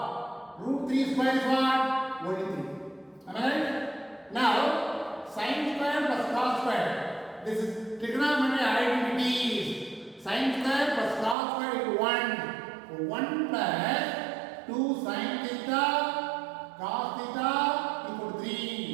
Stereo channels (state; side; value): drops out; left; at 11.4 s